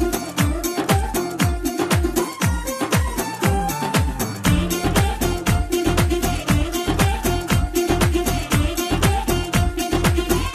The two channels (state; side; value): identical; both; correlation 1.00